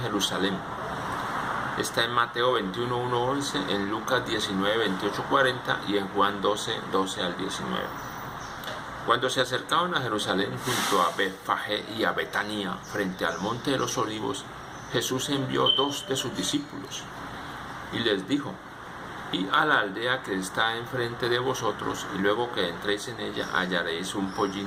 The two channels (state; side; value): identical; both; correlation 1.00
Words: Jerusalén. Está en Mateo 21, 1, 11, en Lucas 19, 28, 40 y en Juan 12, 12 al 19. Cuando se acercaban a Jerusalén junto a Betfagé y a Betania, frente al monte de los olivos, Jesús envió 2 de sus discípulos y les dijo: «Id a la aldea que está enfrente de vosotros, y luego que entréis en ella hallaréis un